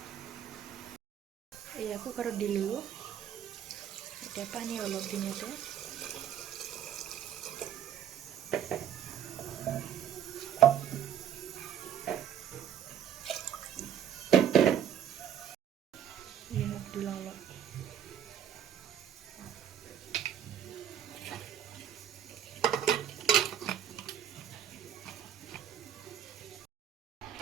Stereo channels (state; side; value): quieter; left; 9.4 dB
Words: এয়া কুকাৰত দিলোঁ। এতিয়া পানী অলপ দিম ইয়াতে। নিমখ দিলোঁ অলপ।